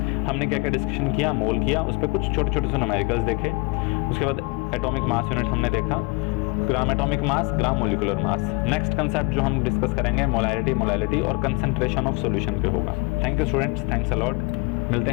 हमने क्या क्या डिस्कशन किया, मोल किया, उस पर कुछ छोटे छोटे से न्यूमेरिकल्स देखे। उसके बाद एटॉमिक मास यूनिट हमने देखा, gram atomic mass, gram molecular mass. Next concept जो हम डिस्कस करेंगे मोलैरिटी और कंसंट्रेशन ऑफ सॉल्यूशन पे होगा। Thank you students, thanks a lot. मिलते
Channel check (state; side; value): quieter; right; 28.5 dB